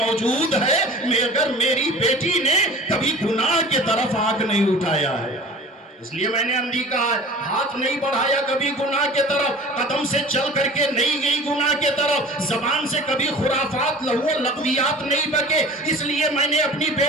ہے، مگر میری بیٹی نے کبھی گناہ کے طرف آنکھ نہیں اٹھایا ہے، اس لیے میں نے اندھی کہا ہے، ہاتھ نہیں بڑھایا کبھی گناہ کے طرف، قدم سے چل کر کے نہیں گئی گناہ کے طرف، زبان سے کبھی خرافات لہو لغویات نہیں بکے، اس لیے میں نے اپنی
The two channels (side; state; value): both; normal; correlation 0.41